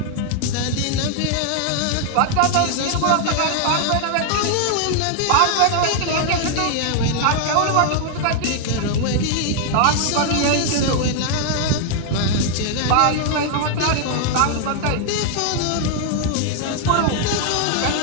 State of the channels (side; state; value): both; different; correlation 0.00